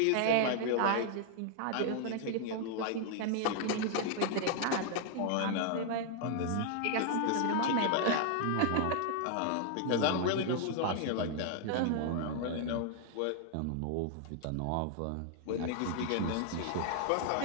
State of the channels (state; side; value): different; both; correlation 0.00